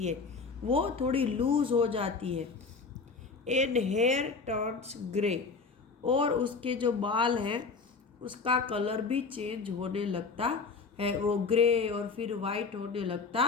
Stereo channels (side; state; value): right; quieter; 4.6 dB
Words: है, वो थोड़ी लूज हो जाती है। एंड हेयर टर्न्स ग्रे, और उसके जो बाल हैं उसका कलर भी चेंज होने लगता है, वो ग्रे और फिर वाइट होने लगता